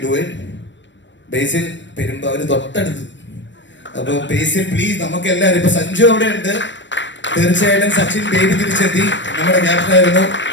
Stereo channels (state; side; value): late; right; 0.53 ms